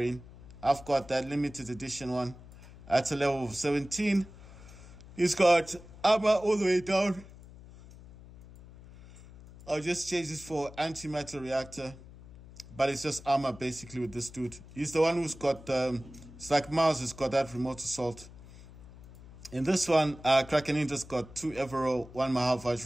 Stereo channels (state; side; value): noise; left; hum, 18 dB below the sound